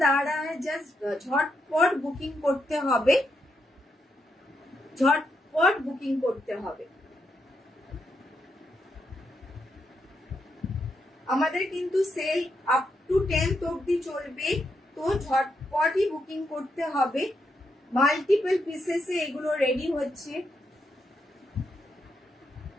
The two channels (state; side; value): normal; both; correlation 0.81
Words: आ रहा है जस्ट झटपट बुकिंग করতে হবে, ঝটপট বুকিং করতে হবে. আমাদের কিন্তু সেল আপ টু 10th অবধি চলবে, তো ঝটপটই বুকিং করতে হবে. মাল্টিপল পিসেসে এগুলো রেডি হচ্ছে,